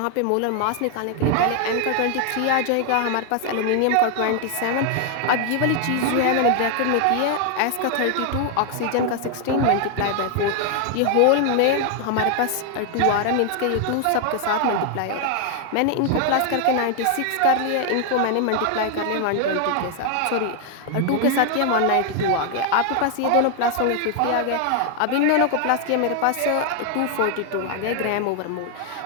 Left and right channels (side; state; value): both; different; correlation 0.00